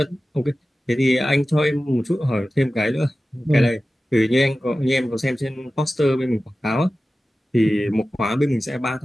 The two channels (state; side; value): normal; both; correlation 0.95